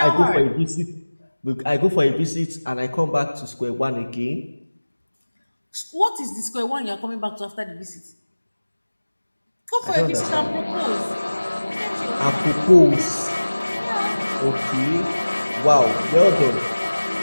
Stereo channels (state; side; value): inverted; both; correlation -1.00